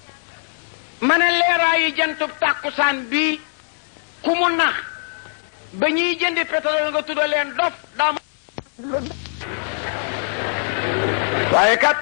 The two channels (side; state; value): right; silent; digital silence